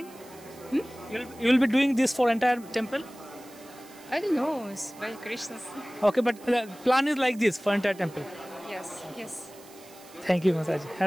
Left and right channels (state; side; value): noise; right; hiss, 22 dB below the sound